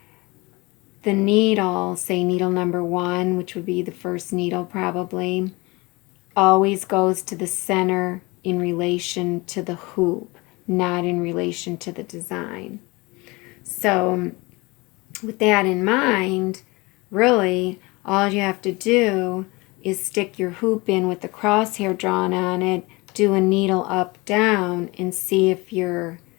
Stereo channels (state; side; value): quieter; right; 24.2 dB